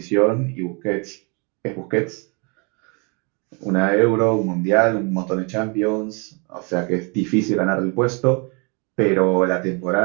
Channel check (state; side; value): quieter; left; 32.8 dB